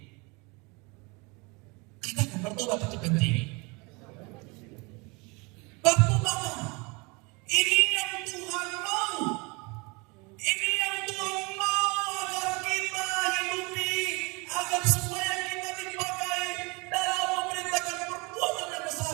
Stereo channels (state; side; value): quieter; left; 28.1 dB